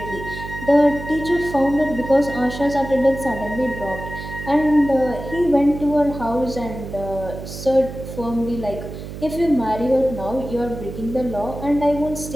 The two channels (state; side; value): noise; right; hum, 10 dB below the sound